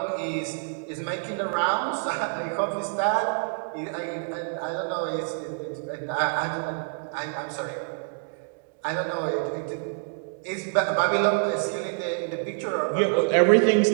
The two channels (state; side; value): silent; left; 60 dB below the other